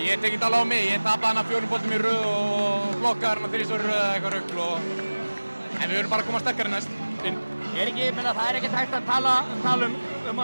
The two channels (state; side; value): inverted; both; correlation -1.00